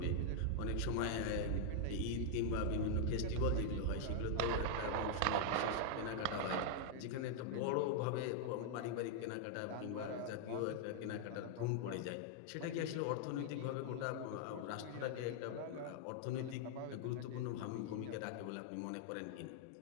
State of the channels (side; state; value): both; different; correlation -0.01